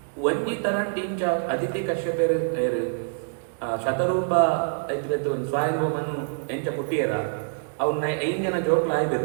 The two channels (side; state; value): left; silent; digital silence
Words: ಒಂಜಿ ತರಂಟಿಂಚ ಅದಿತಿ ಕಶ್ಯಪರು ಶತರೂಪ ಎತ್ತು ಸ್ವಾಯುಮನು ಎಂಚ ಪುಟ್ಟಿಯರ ಅವನ್ನ 5 ಜನ ಜೋಕ್ಲ